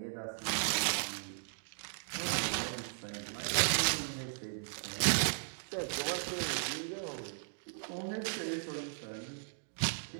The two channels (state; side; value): silent; left; digital silence